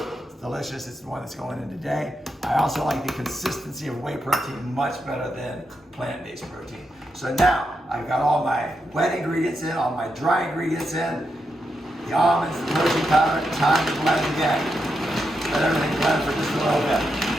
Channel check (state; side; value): normal; both; correlation 0.84